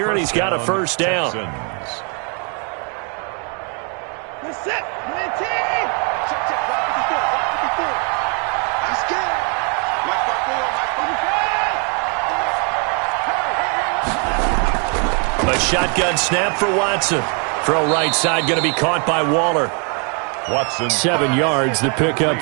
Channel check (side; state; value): left; quieter; 37.9 dB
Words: and he's got a first down. A shotgun snap for Watson. Throw right side going to be caught by Waller. Watson. 7 yards, the pick